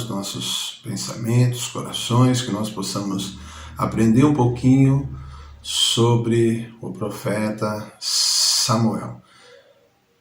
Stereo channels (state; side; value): identical; both; correlation 1.00